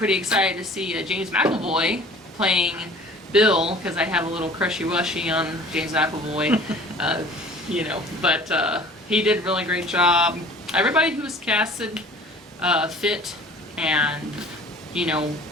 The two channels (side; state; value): both; normal; correlation 0.47